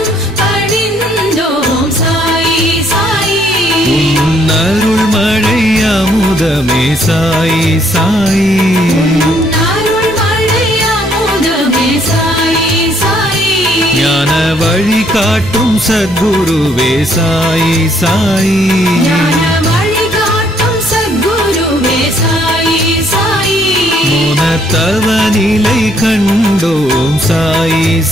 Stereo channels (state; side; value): normal; both; correlation 0.67